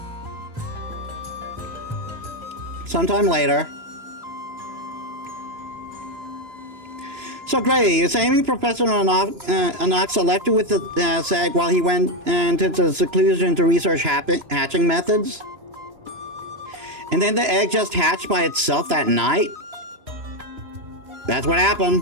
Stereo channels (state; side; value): late; left; 2.9 ms